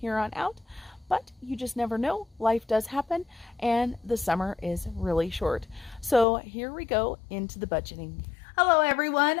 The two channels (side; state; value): right; drops out; at 6.2 s